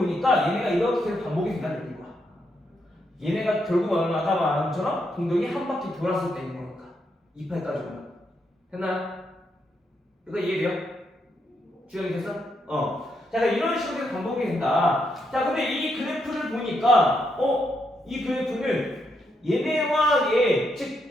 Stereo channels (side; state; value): both; normal; correlation 0.79